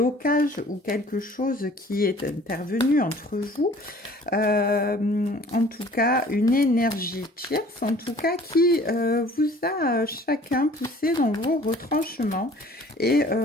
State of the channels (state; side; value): normal; both; correlation 0.51